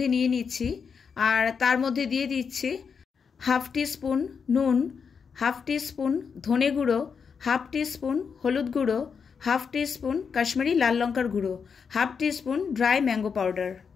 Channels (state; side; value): quieter; right; 6.1 dB